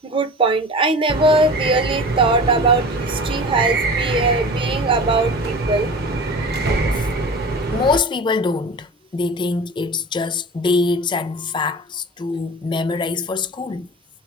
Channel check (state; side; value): normal; both; correlation 0.35